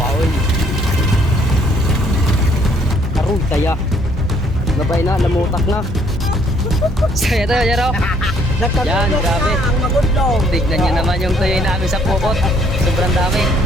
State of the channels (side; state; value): both; normal; correlation 0.65